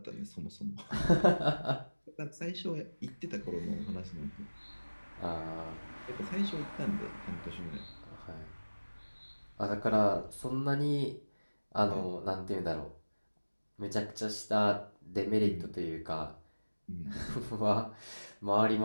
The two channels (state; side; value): inverted; both; correlation -1.00